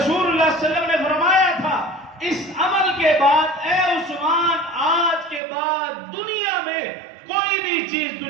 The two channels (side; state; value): left; drops out; at 5.4 s